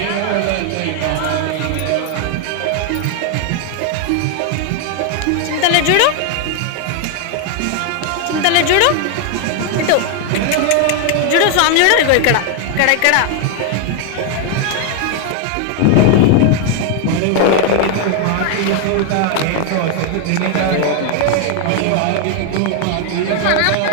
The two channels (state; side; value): different; both; correlation 0.00